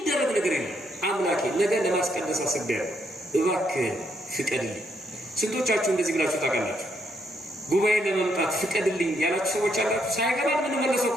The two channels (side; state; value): both; normal; correlation 0.74